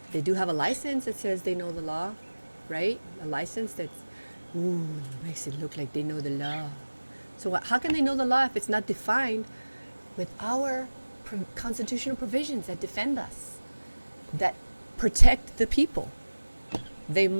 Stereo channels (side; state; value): both; inverted; correlation -1.00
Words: they do have a license that says they know the law, right? A license that makes it look like they know the law. So how can they know the law if it's not defined with our constitutional provisions that defend us, that protect the people? They